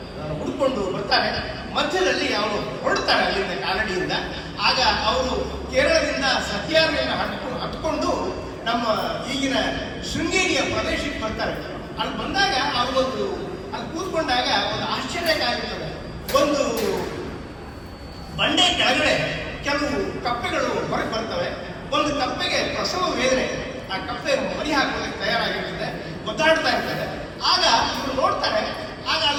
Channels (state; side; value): identical; both; correlation 1.00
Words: ಹುಡುಕೊಂಡು ಬರ್ತಾರೆ. ಮಧ್ಯದಲ್ಲಿ ಅವರು ಹೊರಡ್ತಾರೆ ಅಲ್ಲಿಂದ ಕಾಲಡಿಯಿಂದ. ಆಗ ಅವರು ಕೇರಳದಿಂದ ಸಹ್ಯಾದ್ರಿಯನ್ನು ಹತ್ಕೊಂಡು ನಮ್ಮ ಈಗಿನ ಶೃಂಗೇರಿಯ ಪ್ರದೇಶಕ್ಕೆ ಬರ್ತಾರೆ. ಅಲ್ಲಿ ಬಂದಾಗ ಅವ್ರಿಗೊಂದು ಅಲ್ಲಿ ಕೂತ್ಕೊಂಡಾಗ ಒಂದು ಆಶ್ಚರ್ಯಕಾಗಿರ್ತದೆ. ಒಂದು ಬಂಡೆ ಕೆಳಗಡೆ ಕೆಲವು ಕಪ್ಪೆಗಳು ಹೊರಗೆ ಬರ್ತವೆ. ಒಂದು ಕಪ್ಪೆಗೆ ಪ್ರಸವ ವೇದನೆ, ಆ ಕಪ್ಪೆ ಮರಿ ಹಾಕೋದಕ್ಕೆ ತಯಾರಾಗಿರ್ತದೆ, ಒದ್ದಾಡ್ತಾ ಇರ್ತದೆ. ಆಗ ಇವರು ನೋಡ್ತಾರೆ, ಆಗ